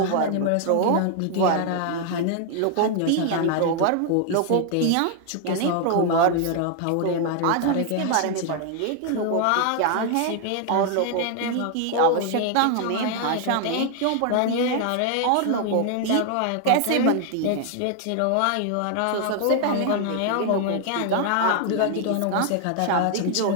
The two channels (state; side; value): different; both; correlation 0.00